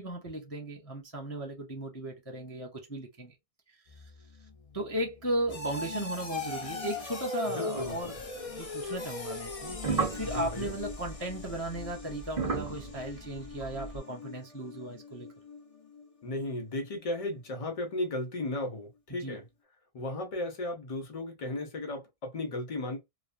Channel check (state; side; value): late; right; 1.6 ms